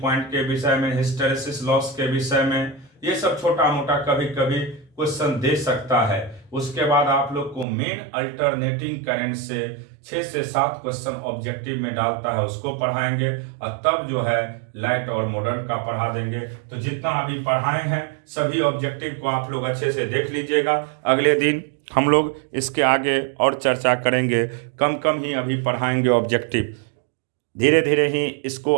के विषय में, हिस्टेरेसिस लॉस के विषय में। ये सब छोटा मोटा कभी कभी क्वेश्चन दे सकता है। उसके बाद आप लोग को मेन अल्टरनेटिंग करंट से 6 से 7 क्वेश्चन ऑब्जेक्टिव में डालता है, उसको पढ़ाएंगे और तब जो है लाइट और मॉडर्न का पढ़ा देंगे। तो जितना अभी पढ़ाए हैं सभी ऑब्जेक्टिव को आप लोग अच्छे से देख लीजिएगा। अगले दिन हम लोग इसके आगे और चर्चा करेंगे। कम कम ही अभी पढ़ाएंगे ऑब्जेक्टिव, धीरे धीरे ही इसको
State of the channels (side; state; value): left; drops out; at 7.7 s